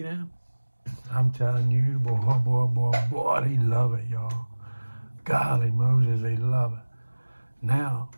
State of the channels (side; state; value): both; inverted; correlation -1.00